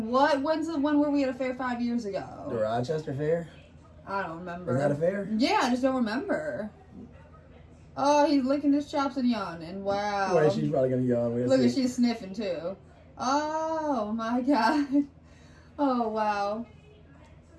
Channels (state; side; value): identical; both; correlation 1.00